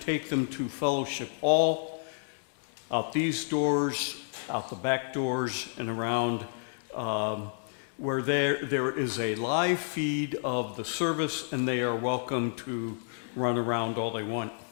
them to Fellowship Hall, out these doors, out the back doors, and around where there is a live feed of the service, and they are welcome to run around all they want.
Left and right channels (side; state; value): right; silent; digital silence